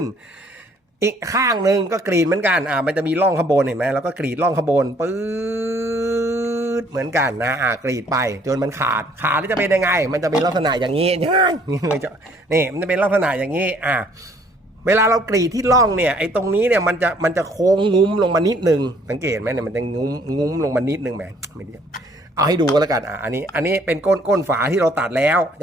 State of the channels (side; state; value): both; normal; correlation 0.61